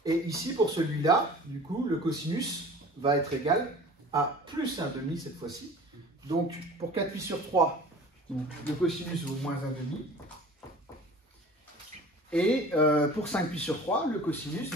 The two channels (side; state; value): both; normal; correlation 0.43